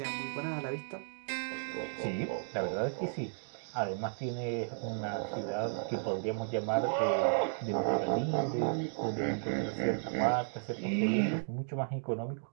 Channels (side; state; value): left; silent; digital silence